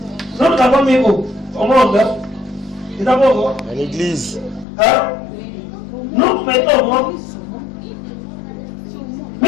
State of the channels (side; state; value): right; drops out; at 4.7 s